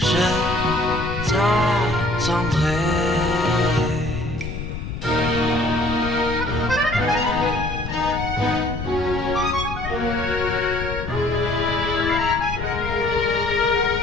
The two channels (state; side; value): noise; left; rumble, 6 dB below the sound